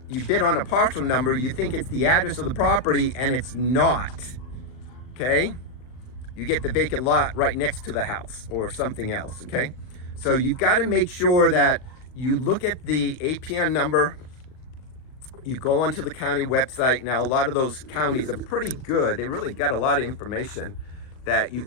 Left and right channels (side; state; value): right; late; 39 ms